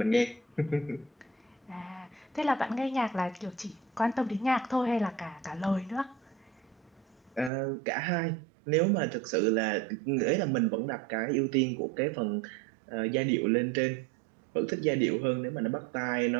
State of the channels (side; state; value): left; drops out; at 7.5 s